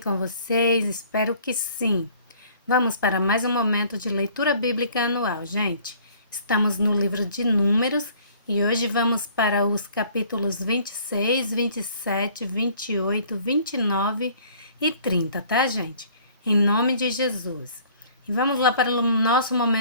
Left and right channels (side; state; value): both; inverted; correlation -0.55